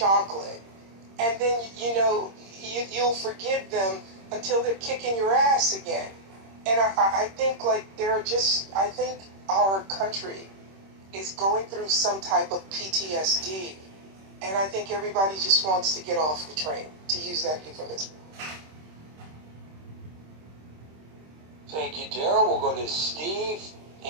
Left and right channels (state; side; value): late; left; 26 ms